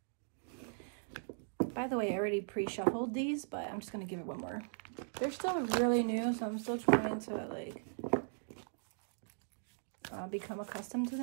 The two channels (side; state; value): left; silent; digital silence